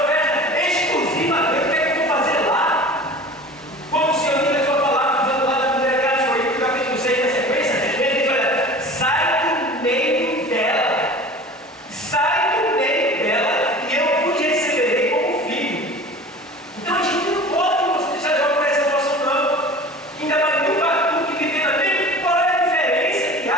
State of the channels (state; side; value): normal; both; correlation 0.39